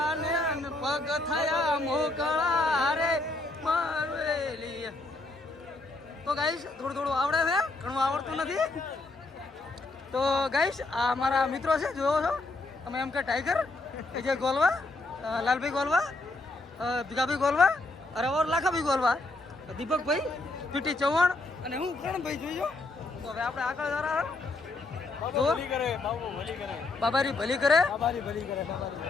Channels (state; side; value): quieter; right; 3.1 dB